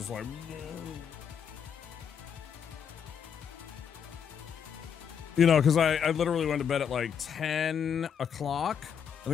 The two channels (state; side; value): quieter; right; 7.7 dB